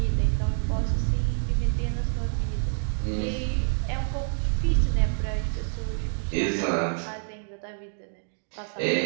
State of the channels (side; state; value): left; silent; 59 dB below the other